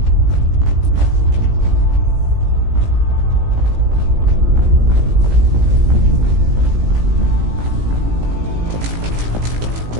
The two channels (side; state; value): left; late; 17 ms